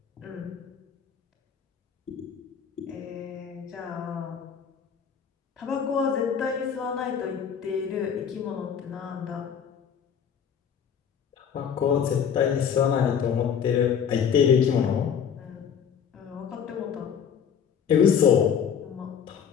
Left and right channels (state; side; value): quieter; right; 7.7 dB